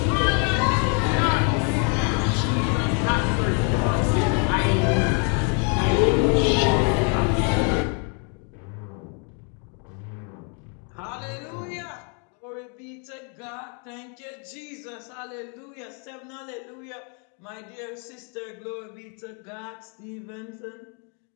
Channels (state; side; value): quieter; right; 38.7 dB